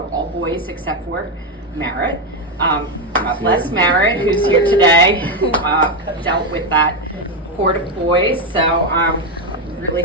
all boys except for Merritt. God bless Merritt, who's here today, who dealt with that horde of boys. So I'm really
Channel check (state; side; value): normal; both; correlation 0.08